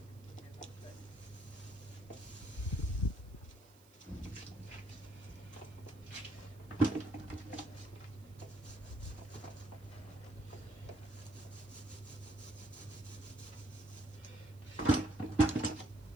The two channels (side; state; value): right; noise; hiss, 26 dB below the sound